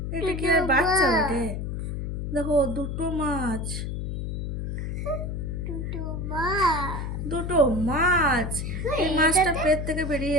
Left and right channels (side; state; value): left; noise; hum, 4 dB below the sound